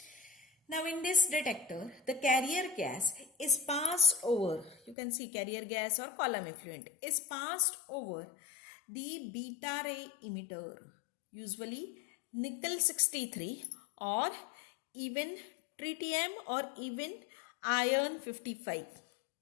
Now in this detector, the carrier gas is passed over, you can see carrier gas or column effluent is passed over the beta ray emitter, usually nickel 63 or even tritium or even iron 55.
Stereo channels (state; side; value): drops out; right; at 5.0 s